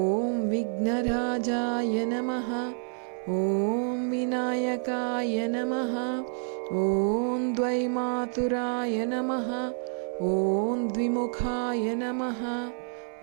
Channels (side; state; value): left; silent; 59 dB below the other